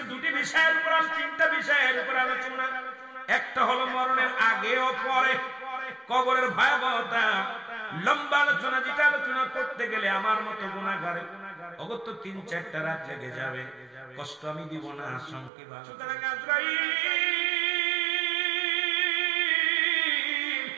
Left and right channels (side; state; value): left; drops out; at 15.5 s